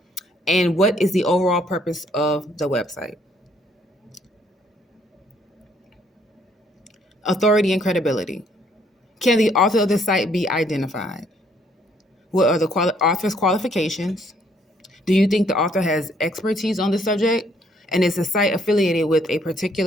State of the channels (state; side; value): normal; both; correlation 0.67